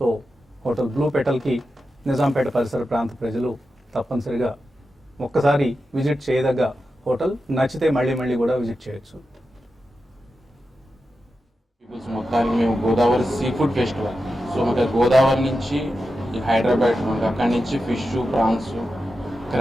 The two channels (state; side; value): normal; both; correlation 0.90